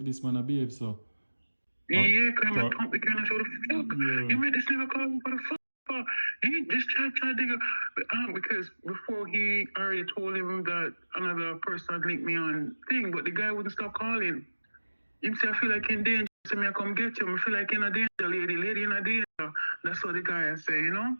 this man a behave so. Yeah, because I'm a pump the kind of show the fuck. You made this nigga call me for the fuck. He just tried to because before he already told him that another person had linked me on thing, but the guy wouldn't stop calling. He said, I feel like in danger. So me I come get you. I feel like in a danger, lady in a danger. That's what the guy say, you know?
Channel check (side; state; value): both; inverted; correlation -1.00